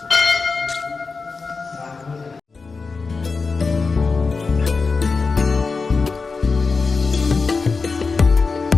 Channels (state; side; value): quieter; right; 4.4 dB